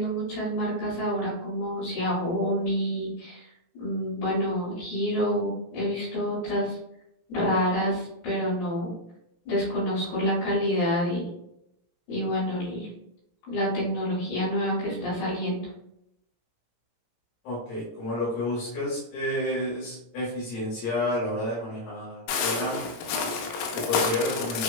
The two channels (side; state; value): right; late; 18 ms